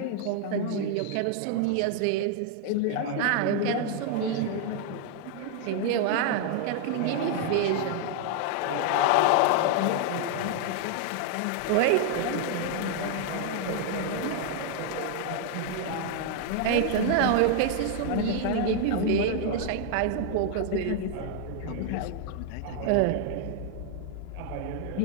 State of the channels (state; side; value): different; both; correlation 0.00